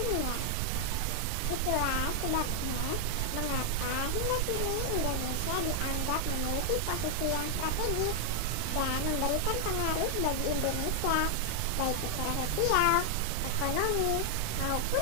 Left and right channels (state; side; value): different; both; correlation 0.00